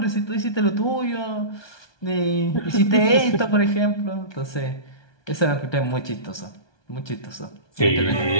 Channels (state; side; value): late; right; 1.2 ms